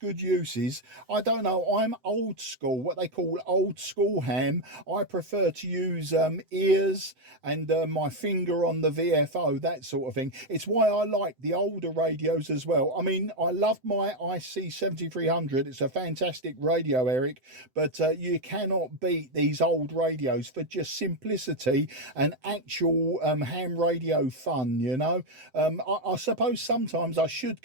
uses. I don't know. I'm old school, what they call old school ham. I prefer to use ears and my finger on the VFO, that sort of thing. It's why I like the older radios as well. I mean, I love my IC7300. It's a fantastic radio, Eric, but you cannot beat these old radios for just simplicity and actual ham radio fun, you know. I suppose sometimes I should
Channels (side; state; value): left; late; 7.8 ms